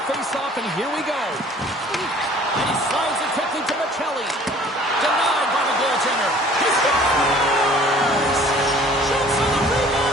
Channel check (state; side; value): normal; both; correlation 0.51